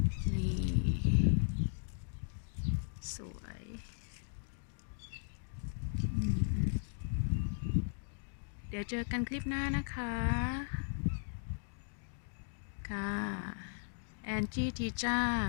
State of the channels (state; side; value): silent; right; digital silence